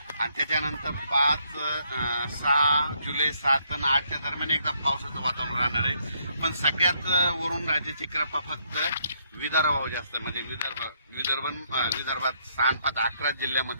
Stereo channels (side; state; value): both; inverted; correlation -0.71